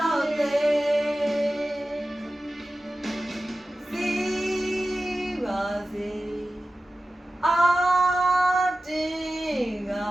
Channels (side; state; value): both; normal; correlation 0.95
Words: ာက်လေစီပါစေအာတင်ငါ